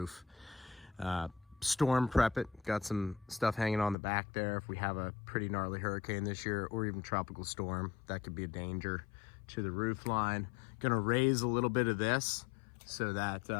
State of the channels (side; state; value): right; drops out; at 4.0 s